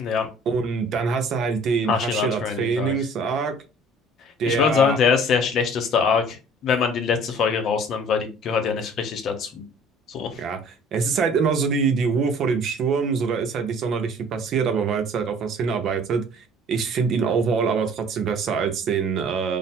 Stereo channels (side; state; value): both; normal; correlation 0.51